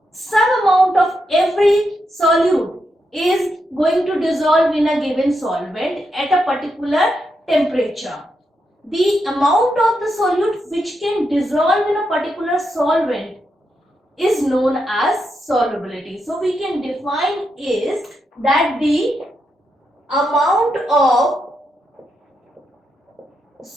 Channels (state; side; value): normal; both; correlation 0.83